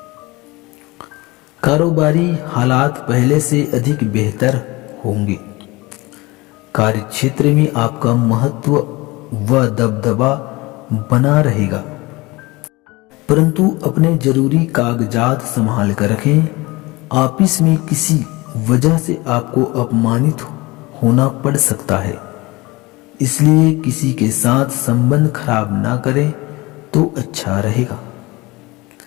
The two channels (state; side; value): quieter; right; 22.6 dB